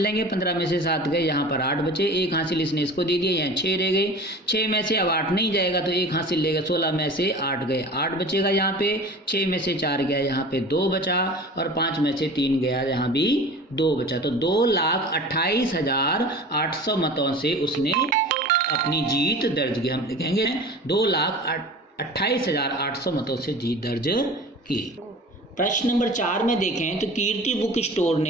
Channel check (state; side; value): normal; both; correlation 0.38